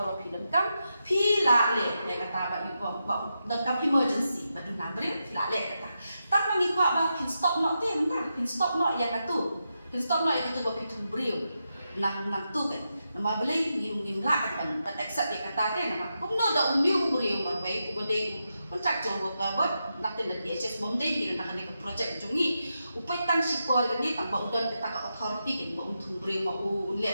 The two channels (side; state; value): both; inverted; correlation -0.87